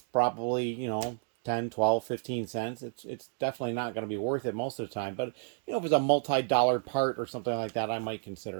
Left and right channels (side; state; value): left; silent; digital silence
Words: 10, 12, 15 cents. It's definitely not going to be worth it most of the time. But, if it's a multi-dollar part or something like that, I might